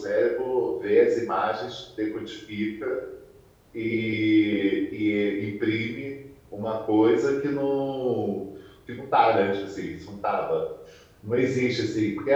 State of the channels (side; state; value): both; identical; correlation 1.00